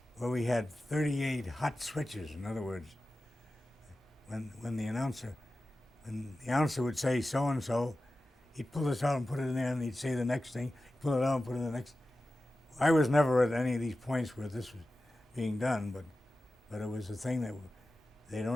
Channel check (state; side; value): normal; both; correlation 0.94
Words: where we had 38 hot switches. In other words, when the announcer would say so-and-so, he'd pull this out and put it in there, and he'd say the next thing, pull it out and put it in the next. I was never at any of these points where this was being done, but it was a thing that they'd